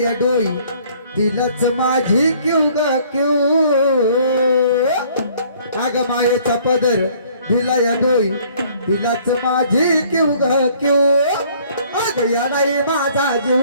डोई दिलच माझी क्यू ग क्यू अग मायेचा पदर दिला या डोई दिलच माझी क्यू ग क्यू अग या नाही माझा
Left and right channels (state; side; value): inverted; both; correlation -0.58